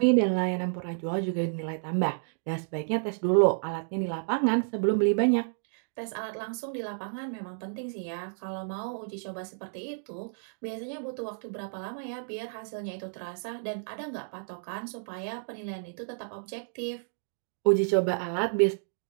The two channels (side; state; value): left; silent; digital silence